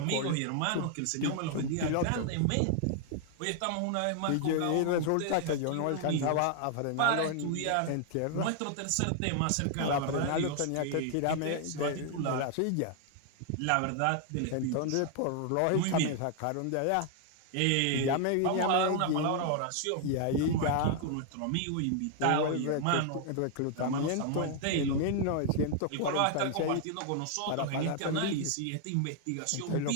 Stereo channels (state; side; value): different; both; correlation 0.00